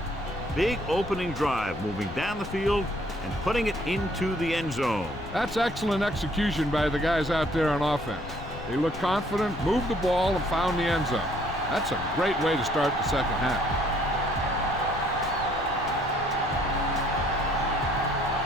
Big opening drive, moving down the field and putting it into the end zone. That's excellent execution by the guys out there on offense. They looked confident, moved the ball, and found the end zone. That's a great way to start the second half.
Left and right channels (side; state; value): left; noise; rumble, 12 dB below the sound